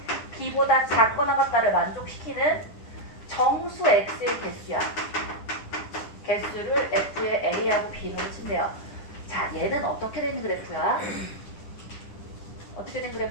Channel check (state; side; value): late; right; 10 ms